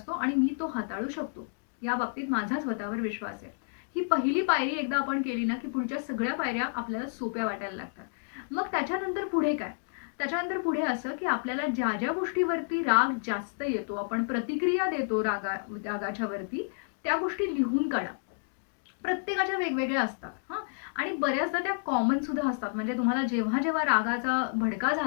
आणि मी तो हाताळू शकतो. या बाबतीत माझा स्वतःवर विश्वास आहे. ही पहिली पायरी एकदा आपण केली ना, की पुढच्या सगळ्या पायऱ्या आपल्याला सोप्या वाटायला लागतात. मग त्याच्यानंतर पुढे काय? त्याच्यानंतर पुढे असं, की आपल्याला ज्या गोष्टीवरती राग जास्त येतो, आपण प्रतिक्रिया देतो रागाच्या वरती, त्या गोष्टी लिहून काढा. प्रत्येकाच्या वेगवेगळ्या असतात हां. आणि बऱ्याचदा त्या कॉमन सुद्धा असतात. म्हणजे तुम्हाला जेव्हा रागाचा भडका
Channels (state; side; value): silent; right; digital silence